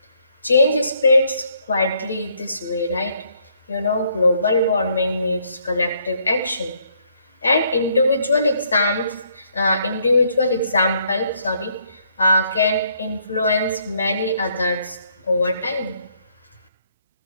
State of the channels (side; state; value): both; inverted; correlation -0.69